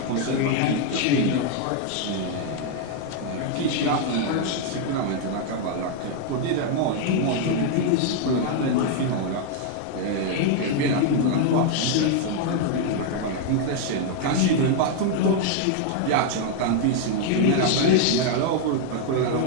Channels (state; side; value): different; both; correlation 0.00